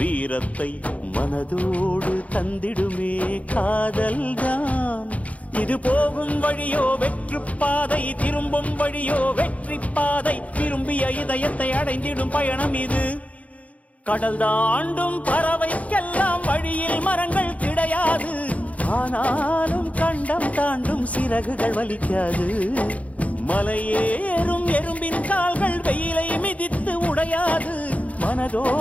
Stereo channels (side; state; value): right; late; 0.067 ms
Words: மனதோடு தந்திடுமே காதல்தான். இது போகும் வழியோ வெற்று பாதை, திரும்பும் வழியோ வெற்றி பாதை, விரும்பிய இதயத்தை அடைந்திடும் பயணம் இது. கடல் தாண்டும் பறவைக்கெல்லாம் வழியில் மரங்கள் கிடையாது, ஆனாலும் கண்டம் தாண்டும் சிறகுகள் வலிக்காது. மலையேறும் எறும்பின் கால்கள் வெயிலை மிதித்து உடையாது,